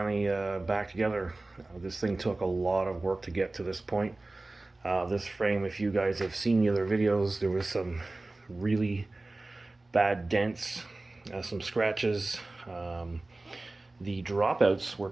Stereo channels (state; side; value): quieter; left; 3.0 dB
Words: back together. This thing took a lot of work to get to this point. This frame, if you guys have seen the other videos, there was some really bad dents, some scratches. The dropouts were